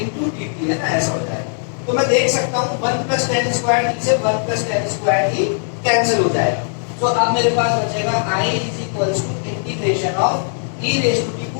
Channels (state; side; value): silent; right; 67 dB below the other